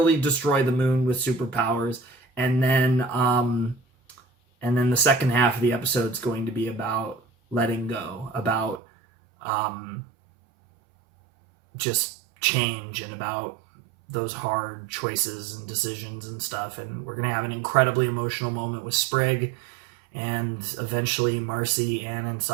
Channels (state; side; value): drops out; left; at 8.8 s